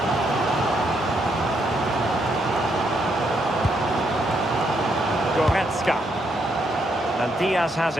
And Diaz has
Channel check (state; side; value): normal; both; correlation 0.76